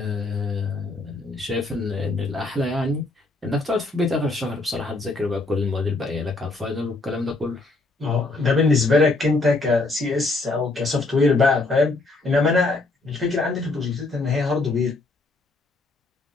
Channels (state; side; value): quieter; right; 3.3 dB